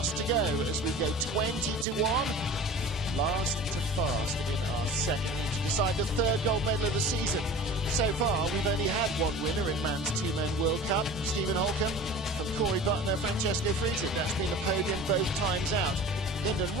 to go as we go 20-1. Last to fast in our second heat to decide the third gold medal of the season. So far, we've only had one winner in Man's 2Men World Cup. Stephen Holcomb from Corey Butner, Francesco Friedrich. That's been the podium both times out. Lyndon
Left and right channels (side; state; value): both; normal; correlation 0.39